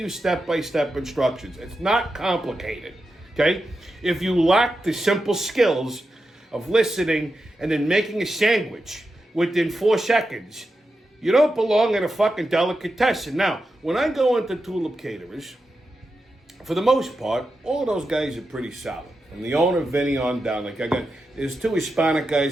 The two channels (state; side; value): normal; both; correlation 0.89